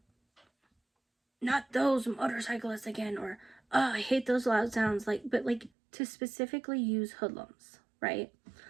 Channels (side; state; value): left; drops out; at 5.7 s